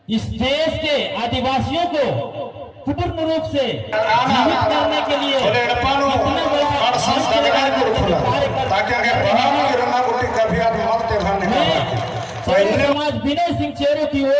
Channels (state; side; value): identical; both; correlation 1.00